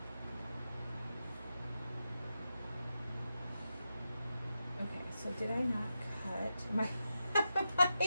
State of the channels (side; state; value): both; inverted; correlation -0.89